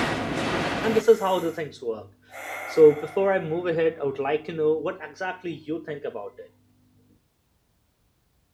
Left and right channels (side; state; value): both; identical; correlation 1.00